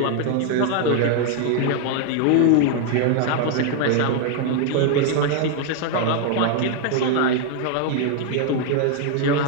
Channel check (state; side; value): different; both; correlation 0.00